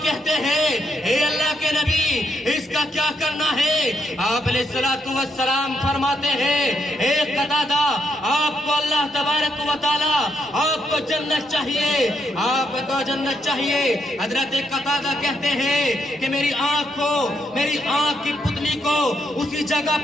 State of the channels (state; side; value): normal; both; correlation 0.78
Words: کہتے ہیں، اے اللہ کے نبی، اس کا کیا کرنا ہے؟ آپ علیہ الصلوۃ والسلام فرماتے ہیں، اے قتادہ، آپ کو اللہ تبارک و تعالیٰ آپ کو جنت چاہیے، آپ کو جنت چاہیے۔ حضرت قتادہ کہتے ہیں کہ میری آنکھ کی پتلی کو اسی جگہ